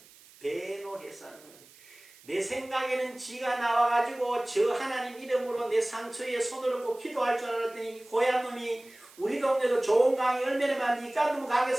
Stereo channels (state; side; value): noise; right; hiss, 24 dB below the sound